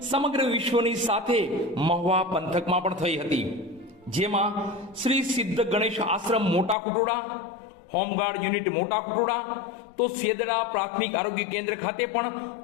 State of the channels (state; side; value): drops out; right; at 6.8 s